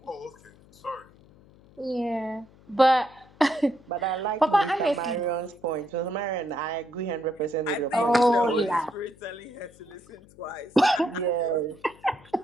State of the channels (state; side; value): noise; left; hum, 26 dB below the sound